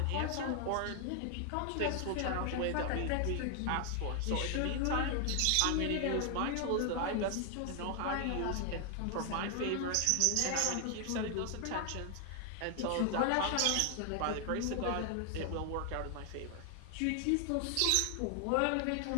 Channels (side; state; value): both; different; correlation 0.00